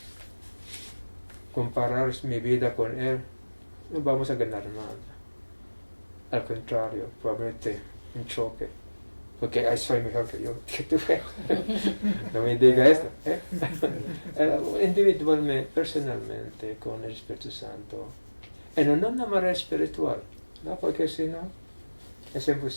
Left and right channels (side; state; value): both; inverted; correlation -1.00